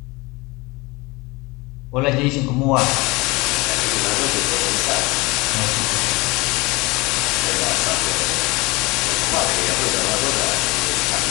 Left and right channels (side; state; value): right; quieter; 23.9 dB